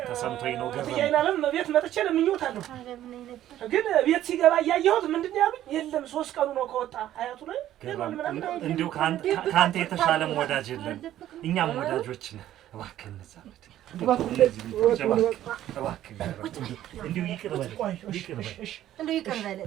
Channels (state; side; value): quieter; left; 12.7 dB